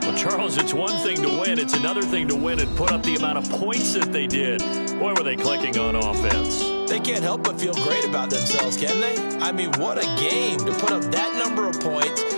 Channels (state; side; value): inverted; both; correlation -1.00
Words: Well, Charles, it's one thing to win. It's another thing to win and put up the amount of points that they did. Boy, were they clicking on offense. They can't help but feel great about themselves, can they? I mean, what a game to put up that number of points,